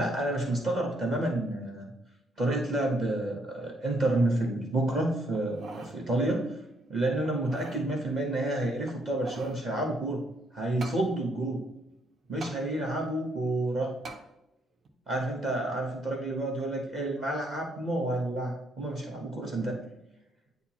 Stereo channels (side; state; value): both; normal; correlation 0.71